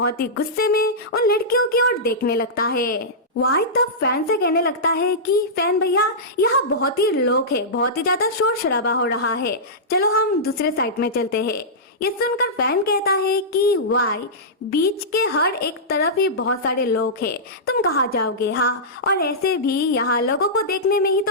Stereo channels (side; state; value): both; normal; correlation -0.14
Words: ही गुस्से में उन लड़कियों की ओर देखने लगता है। वाई तब फैन से कहने लगता है कि फैन भैया, यहाँ बहुत ही लोग हैं, बहुत ही ज्यादा शोर शराबा हो रहा है, चलो हम दूसरे साइड में चलते हैं। ये सुनकर फैन कहता है कि वाई, बीच के हर एक तरफ ही बहुत सारे लोग हैं, तुम कहाँ जाओगे? हाँ, और ऐसे भी यहाँ लोगों को देखने में ही